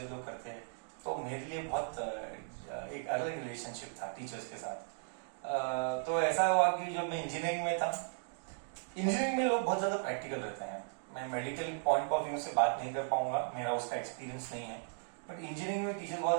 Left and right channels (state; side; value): silent; left; digital silence